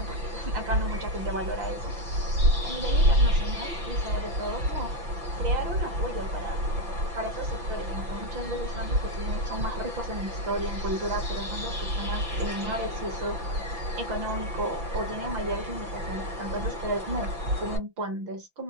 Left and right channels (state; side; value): late; left; 5.9 ms